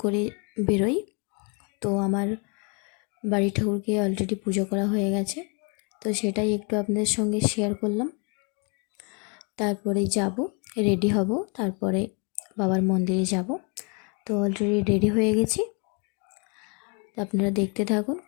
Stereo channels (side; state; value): right; quieter; 33.6 dB